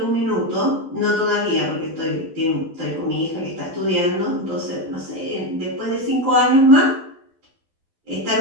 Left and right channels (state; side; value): late; left; 12 ms